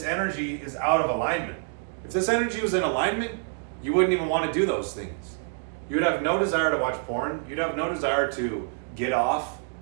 energy is out of alignment. If this energy was in alignment, you wouldn't even want to do those things. You would have no desire to watch porn. You'd have no desire to get off.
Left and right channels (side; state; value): left; silent; digital silence